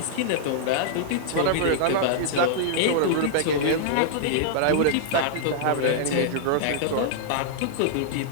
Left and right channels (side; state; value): both; different; correlation -0.01